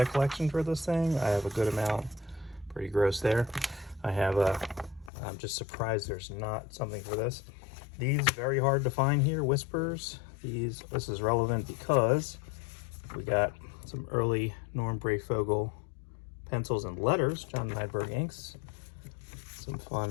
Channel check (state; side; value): drops out; right; at 5.1 s